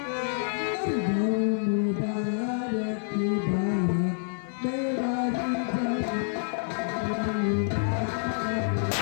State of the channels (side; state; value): right; silent; 60 dB below the other